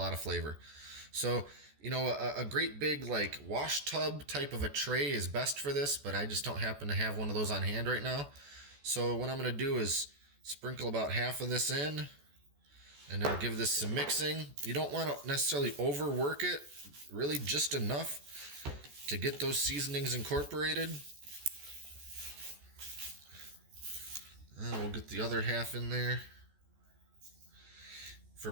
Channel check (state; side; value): late; left; 14 ms